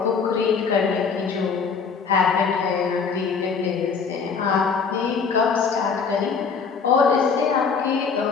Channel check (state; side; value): quieter; right; 5.6 dB